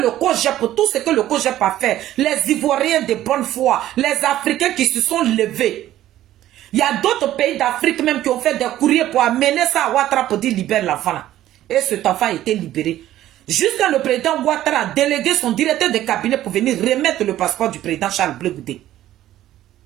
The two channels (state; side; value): quieter; left; 13.4 dB